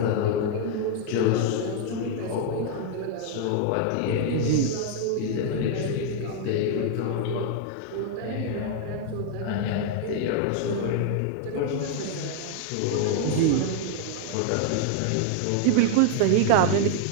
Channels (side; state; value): both; different; correlation 0.00